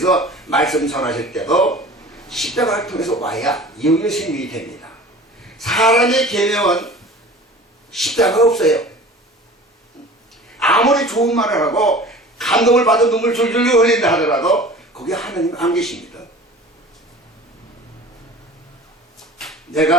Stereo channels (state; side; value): normal; both; correlation 0.41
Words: 말씀 전하실 때도 십자가를 통해서 와야 영의 생명이 됩니다. 사람의 계명은 십자가가 없어요. 아무리 좋은 말을 하고 감동을 받아 눈물 줄줄 흘린다 하더라도 거기 하나님 안 계십니다.